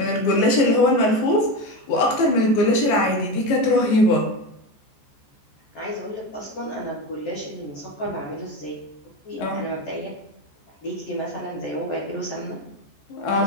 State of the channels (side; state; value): right; late; 14 ms